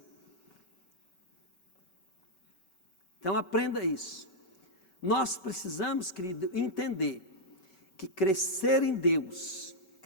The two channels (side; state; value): right; late; 5.3 ms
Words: Então aprenda isso. Nós precisamos, querido, entender que crescer em Deus